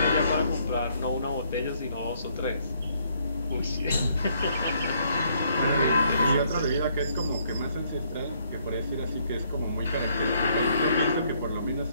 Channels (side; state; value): both; inverted; correlation -0.68